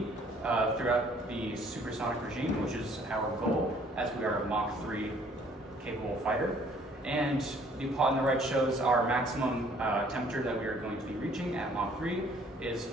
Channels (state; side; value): normal; both; correlation 0.59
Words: throughout the supersonic regime, which is our goal, as we are a Mach 3 capable fighter. And the plot on the right shows our maximum temperature that we are going to be reaching at Mach 3 is